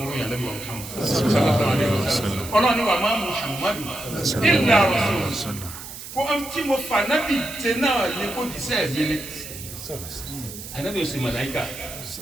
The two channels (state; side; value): noise; right; hiss, 12 dB below the sound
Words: ló yàn lẹ́bi wọn Muhammad sallallahu alaihi wasallam ọlọ́ni wà má Muhammadu illa rasul kó tí mo fà nábì tẹ náà ní kó jíṣẹ́ mi ni ànábì òsì màláíkà